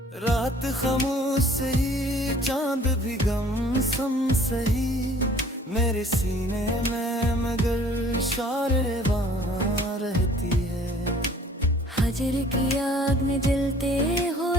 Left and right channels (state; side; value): normal; both; correlation 0.53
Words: रात खामोश सही चांद भी गम सम सही, मेरे सीने में मगर शारेबां रहती है। फजर की आग में जलते